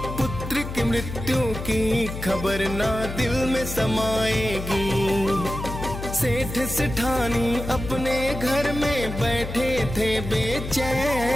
पुत्र की मृत्यु की खबर ना दिल में समाएगी। सेठ सेठानी अपने घर में बैठे थे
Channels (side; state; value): left; noise; hum, 7 dB below the sound